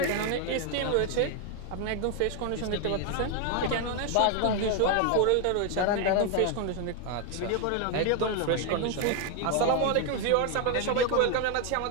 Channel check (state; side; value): different; both; correlation 0.01